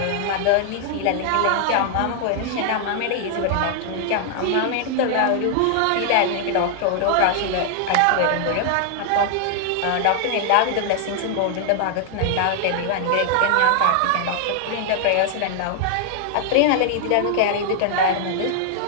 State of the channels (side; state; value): both; different; correlation 0.00